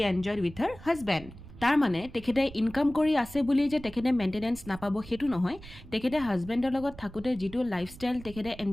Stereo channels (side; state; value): right; noise; rumble, 17 dB below the sound